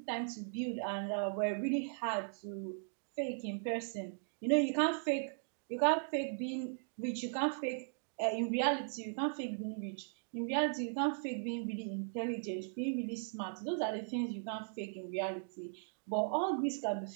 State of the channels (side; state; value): left; silent; digital silence